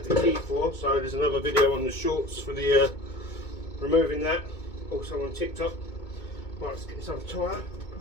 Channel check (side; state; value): right; late; 2.2 ms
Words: the key for, so there's another video on the shorts for the removing that. Also on TikTok. Right, let's get this other tyre.